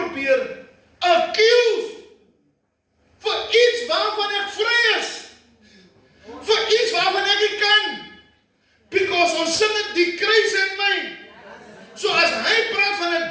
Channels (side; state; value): both; identical; correlation 1.00